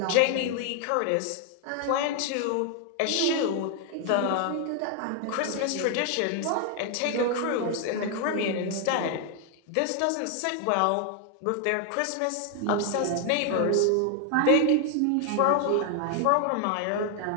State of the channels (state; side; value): different; both; correlation 0.00